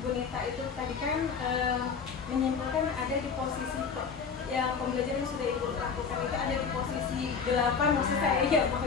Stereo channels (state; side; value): quieter; right; 5.8 dB